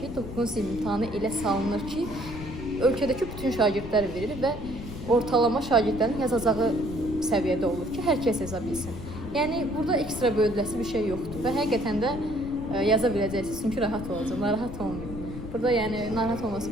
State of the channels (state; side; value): noise; left; rumble, 10 dB below the sound